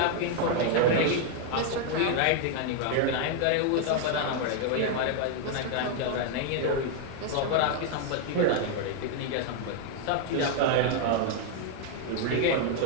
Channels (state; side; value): different; both; correlation 0.00